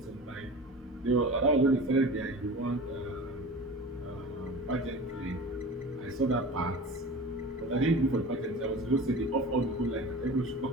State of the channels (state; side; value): normal; both; correlation 0.35